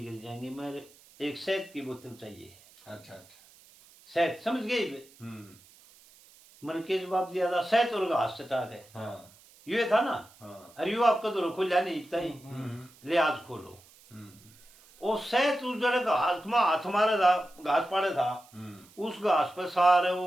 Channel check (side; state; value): right; noise; hiss, 26 dB below the sound